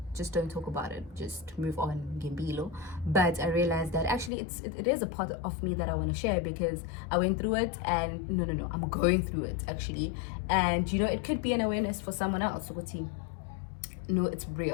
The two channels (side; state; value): right; drops out; at 4.3 s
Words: just don't talk about it, just move on, Gimbilo. But I realized that actually it is a part of me that I want to share, because I went through it, and no, I'm going through it actually, and you know, it could be an awareness for someone else. No, it's